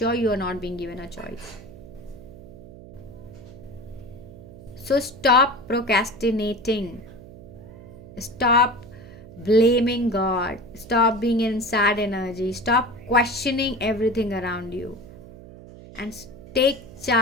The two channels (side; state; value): right; noise; hum, 17 dB below the sound